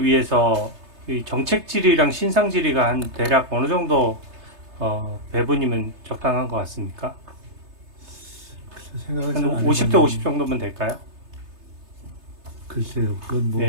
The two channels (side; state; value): left; late; 3.3 ms